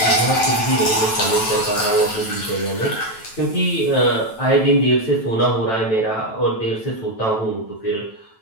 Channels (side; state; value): right; late; 9.1 ms